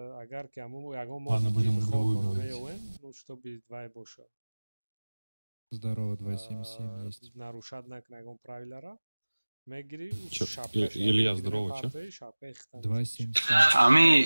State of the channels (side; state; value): both; inverted; correlation -1.00